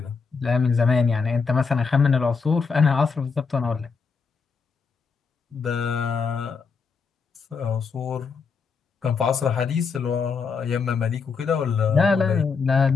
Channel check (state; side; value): quieter; right; 5.3 dB